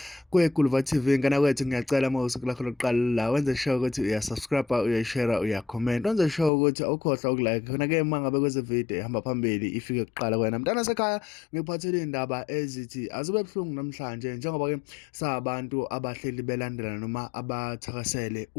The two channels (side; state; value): right; drops out; at 6.5 s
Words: kweGuluva TV. Ngana kwethu ngiyacela uma usuku lakho lokuqala la wenze sure ukuthi uyasubscribe, uyashare, uyacomment, wenze sure ukuthi awukhohlwa ukulike khona-ke uma ngabe kweze video ihamba phambili ifike kuqala kwena mntana sekhaya. Ngikuphathele iy'ndaba ezithi azube buhlungu namhlanje njengoba-ke sabantu abahleli belandela noma abathakasele